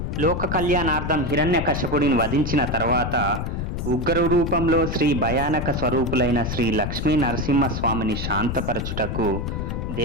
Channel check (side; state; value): left; noise; rumble, 3 dB below the sound